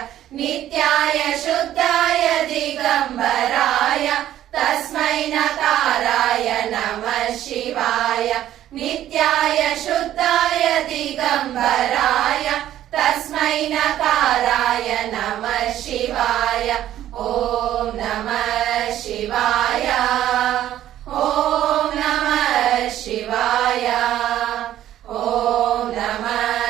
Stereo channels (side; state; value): left; quieter; 12.4 dB